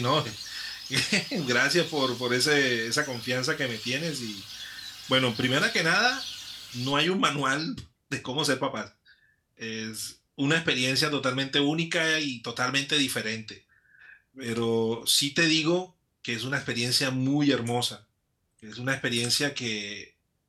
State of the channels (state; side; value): identical; both; correlation 1.00